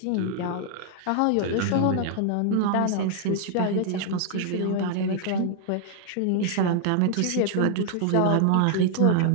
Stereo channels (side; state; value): both; different; correlation 0.00